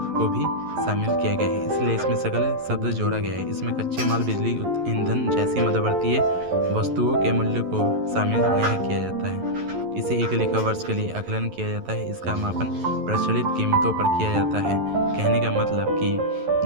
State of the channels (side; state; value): left; late; 11 ms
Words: को भी शामिल किया गया है, इसलिए इसमें सकल शब्द जोड़ा गया है। इसमें कच्चे माल, बिजली, ईंधन जैसी मध्यवर्तीय वस्तुओं के मूल्य को शामिल नहीं किया जाता है। इसे एक लेखा वर्ष के लिए आकलन किया जाता है। इसका मापन प्रचलित कीमतों पर किया जाता है। कहने का मतलब